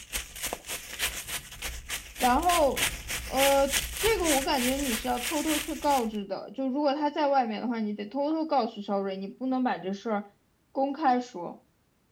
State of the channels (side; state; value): both; identical; correlation 1.00